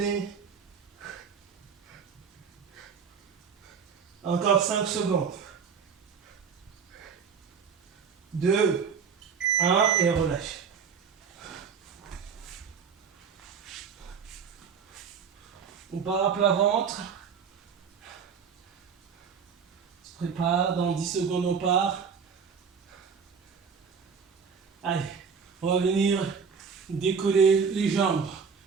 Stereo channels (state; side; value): quieter; left; 6.3 dB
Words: Encore 5 secondes. 2, 1 et relâche. On part à plat ventre. On se prépare, dans 10 secondes on part. Allez, on va venir décoller les jambes.